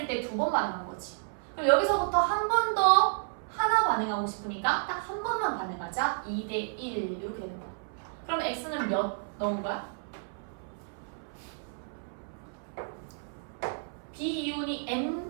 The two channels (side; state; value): left; silent; 57 dB below the other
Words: 때 2번 반응한 거지. 그럼 여기서부터 한 번 더 하나 반응하고 싶으니까 딱 한 번만 반응하자. 2대 1 이렇게 되는 거야. 그럼 X는 몇 넣은 거야? B 이온이